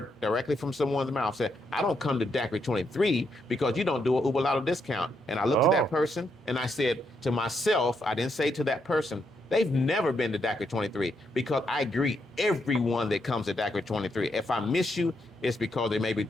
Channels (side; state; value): both; normal; correlation 0.79